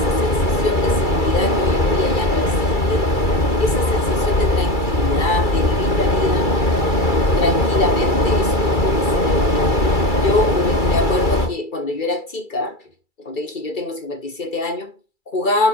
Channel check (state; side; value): late; right; 2.3 ms